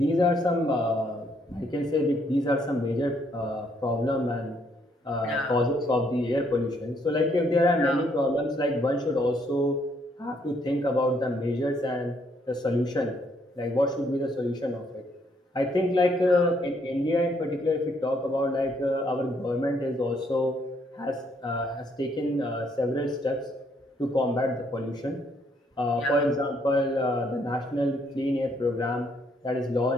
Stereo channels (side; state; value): both; normal; correlation 0.70